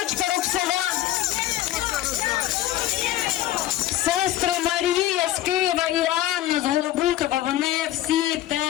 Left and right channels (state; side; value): quieter; right; 13.8 dB